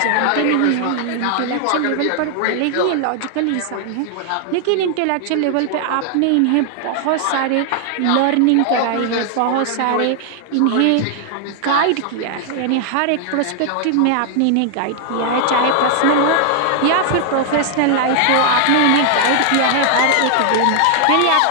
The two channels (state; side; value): different; both; correlation 0.00